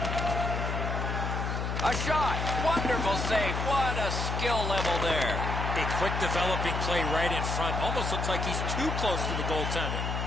A shot. Wonderful save. What a skill level there. A quick developing play right in front. Almost looks like he's too close to the goaltender.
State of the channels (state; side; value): noise; left; hum, 2 dB below the sound